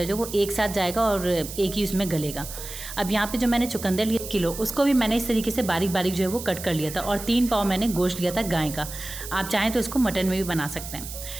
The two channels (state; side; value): noise; right; hiss, 10 dB below the sound